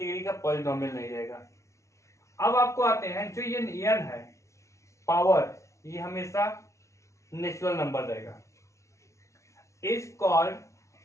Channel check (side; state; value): right; late; 0.14 ms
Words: का पॉलिनोमियल नहीं रहेगा। अब आपको आते हैं जो ये n है पावर, ये हमेशा नेचुरल नंबर रहेगा। Is called